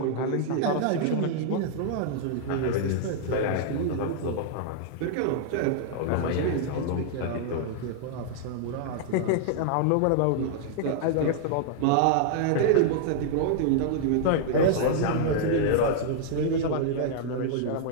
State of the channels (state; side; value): different; both; correlation -0.01